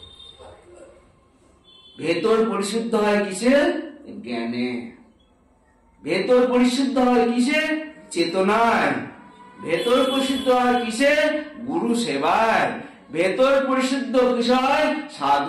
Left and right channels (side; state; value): both; identical; correlation 1.00